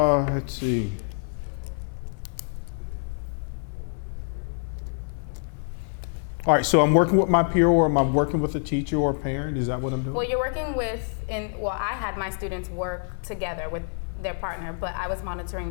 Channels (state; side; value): silent; right; 61 dB below the other